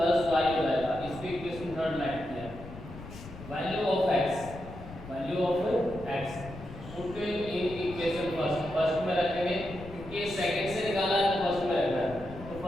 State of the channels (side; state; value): left; noise; rumble, 14 dB below the sound